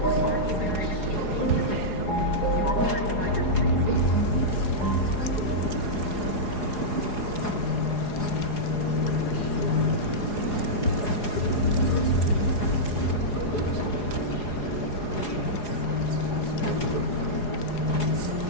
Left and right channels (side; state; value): right; late; 4.8 ms